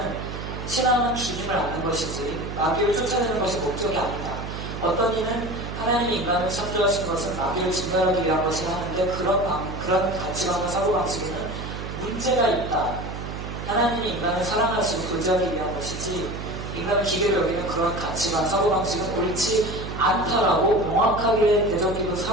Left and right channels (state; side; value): noise; right; hum, 7 dB below the sound